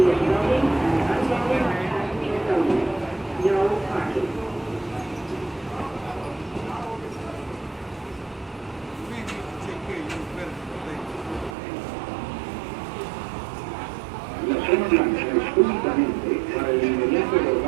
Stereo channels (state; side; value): drops out; left; at 11.6 s